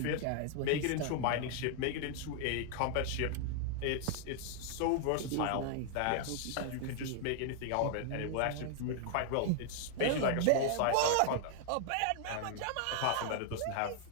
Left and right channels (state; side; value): different; both; correlation 0.00